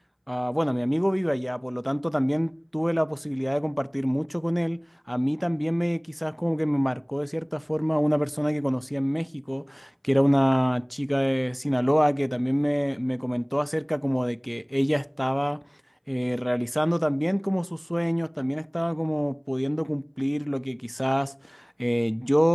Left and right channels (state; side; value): identical; both; correlation 1.00